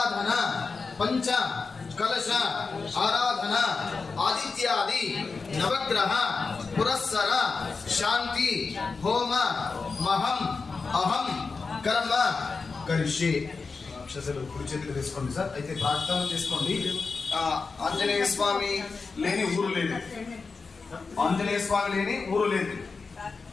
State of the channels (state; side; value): quieter; right; 4.5 dB